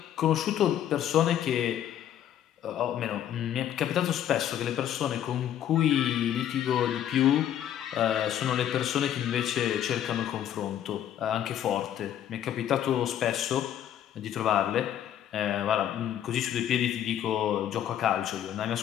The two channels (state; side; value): quieter; right; 10.6 dB